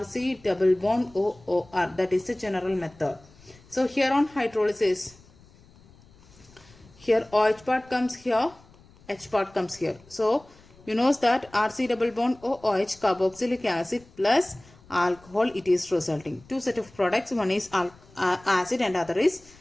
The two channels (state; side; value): noise; left; rumble, 26 dB below the sound